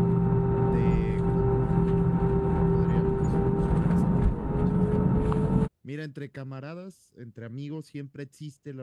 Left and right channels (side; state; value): both; identical; correlation 1.00